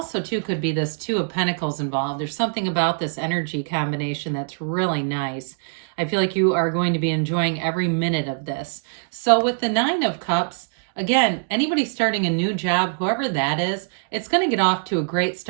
too, could be this Two of Pentacles involved. There's something about this energy combination that's really nice. I feel like you are going to be enjoying every minute of this. So with the 9 of Cups, again, anybody starting a new job, whoever that is, it's going to get off to a great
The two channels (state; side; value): silent; left; digital silence